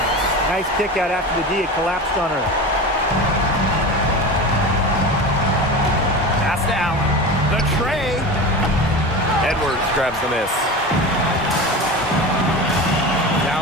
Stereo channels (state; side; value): normal; both; correlation 0.29